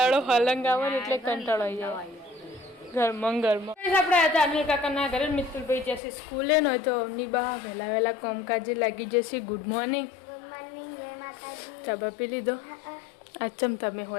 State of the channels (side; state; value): right; drops out; at 6.0 s